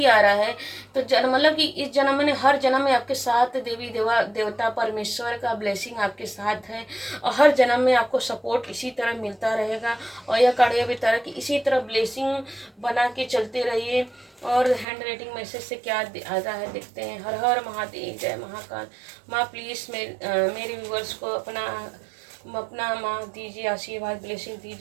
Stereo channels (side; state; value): left; drops out; at 14.9 s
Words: आ रहा है। तो मतलब कि इस जन्म में, हर जन्म में आपके साथ देवी देवता परमेश्वर का ब्लेसिंग आपके साथ है, और हर जन्म में आपको सपोर्ट इसी तरह मिलता रहेगा। और यह कार्य भी तरह की इसी तरह ब्लेसिंग बना के चलते रहिए। और हैंड राइटिंग मैसेज से क्या आता है देखते हैं। हर हर महादेव, जय महाकाल। माँ प्लीज़ मेरे व्यूवर्स को अपना माँ दीजिए, आशीर्वाद, ब्लेसिंग